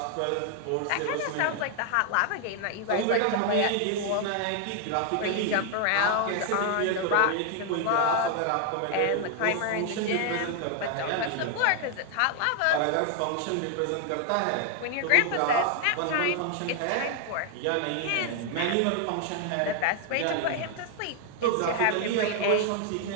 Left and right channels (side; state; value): both; different; correlation 0.00